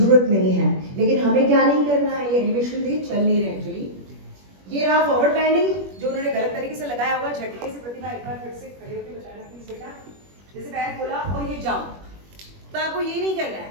नहीं है। लेकिन हमें क्या नहीं करना है, ये एलिवेशन थे चल नहीं रहे एक्चुअली। ये रहा फॉरवर्ड बैंडिंग, जो उन्होंने गलत तरीके से लगाया होगा। झटके से प्रतिभा एक बार फिर से खड़े होकर बचाना प्लीज बेटा, जैसे पैर खोला और ये जाम, तो आपको ये नहीं करना है।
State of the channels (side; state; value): left; late; 21 ms